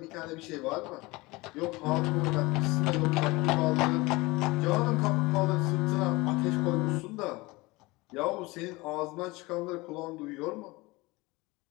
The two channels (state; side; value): quieter; right; 22.4 dB